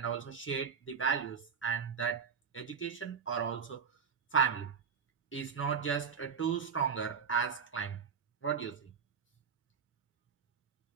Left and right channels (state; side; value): quieter; left; 6.4 dB